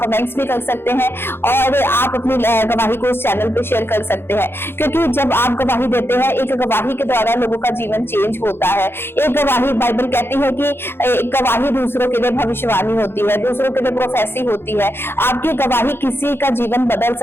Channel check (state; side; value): late; right; 0.11 ms